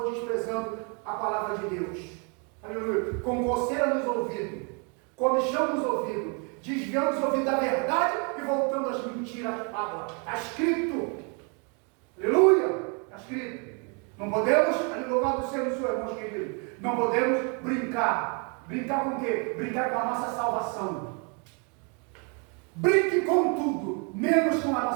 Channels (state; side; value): quieter; left; 35.9 dB